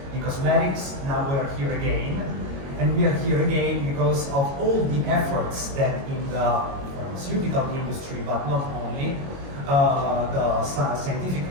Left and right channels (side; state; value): left; late; 22 ms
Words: in cosmetics. Now we are here again, and we are here again because of all the efforts that in the pharmaceutical industry, but not only, the scientific